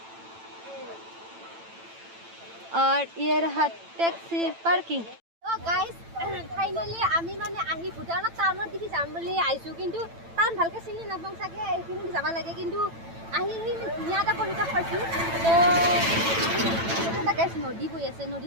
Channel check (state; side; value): late; left; 9.0 ms